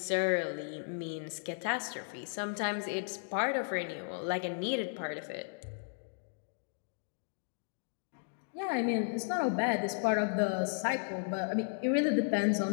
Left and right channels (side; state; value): right; silent; digital silence